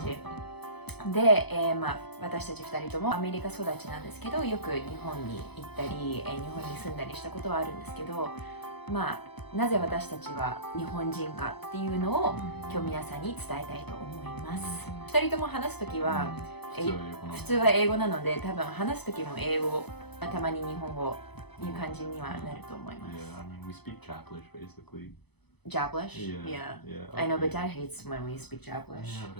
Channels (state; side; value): late; right; 0.98 ms